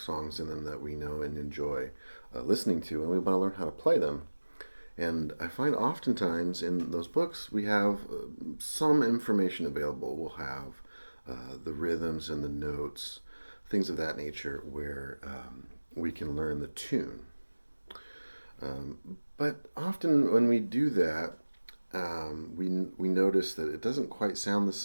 in them that we know and enjoy listening to, and we want to learn how to play them. And I find oftentimes in those books we have some information available. We'll have the rhythms and the notes, things of that nature, where we can learn the tune. Um, but often when we do that, we notice that it doesn't quite sound the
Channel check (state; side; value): inverted; both; correlation -1.00